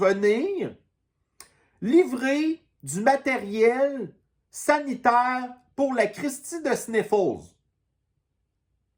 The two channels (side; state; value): both; identical; correlation 1.00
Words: livrer du matériel sanitaire pour la Christie de Sniffles.